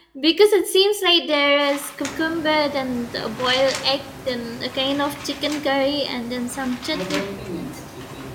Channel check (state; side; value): identical; both; correlation 1.00